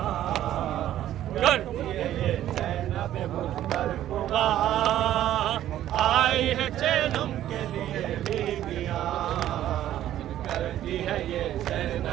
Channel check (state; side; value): quieter; left; 12.4 dB